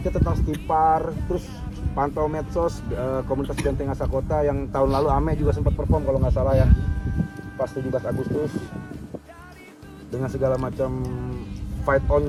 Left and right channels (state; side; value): identical; both; correlation 1.00